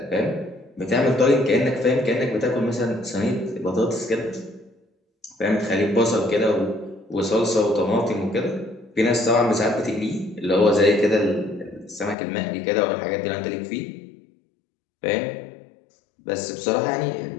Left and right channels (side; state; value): right; drops out; at 12.2 s